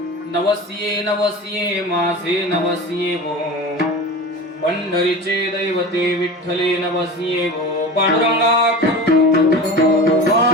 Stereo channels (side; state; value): both; normal; correlation 0.32